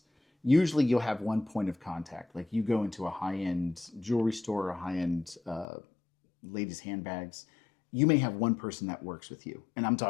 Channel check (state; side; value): drops out; right; at 5.7 s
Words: Usually you'll have one point of contact. Like you go into a high-end jewelry store or high-end ladies' handbags. You may have one person that works with you. And I'm